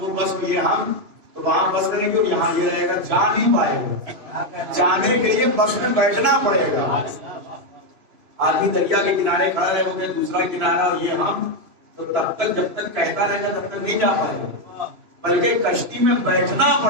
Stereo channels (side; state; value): left; late; 3.0 ms